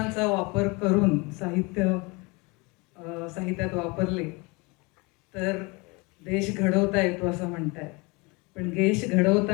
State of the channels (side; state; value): right; quieter; 27.2 dB